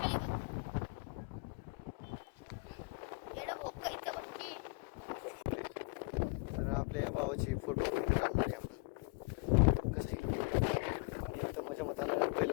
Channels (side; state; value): right; quieter; 28.9 dB